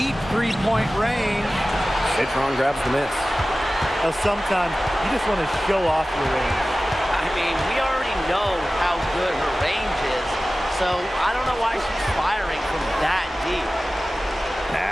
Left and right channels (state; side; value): normal; both; correlation 0.96